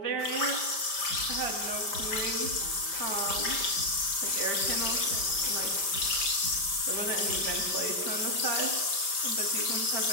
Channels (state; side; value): late; right; 5.1 ms